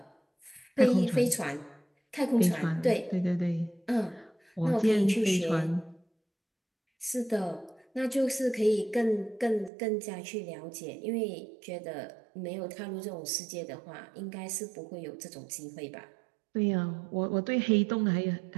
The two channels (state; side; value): drops out; left; at 9.7 s